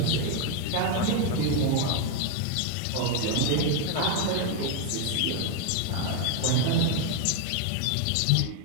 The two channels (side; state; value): both; different; correlation 0.01